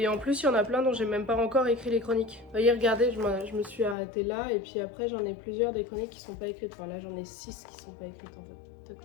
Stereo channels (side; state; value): right; drops out; at 4.0 s